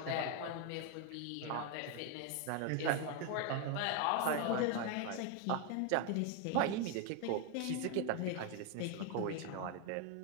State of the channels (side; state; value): both; different; correlation 0.01